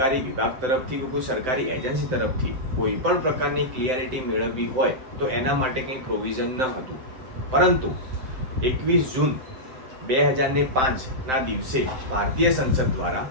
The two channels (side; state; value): left; late; 7.8 ms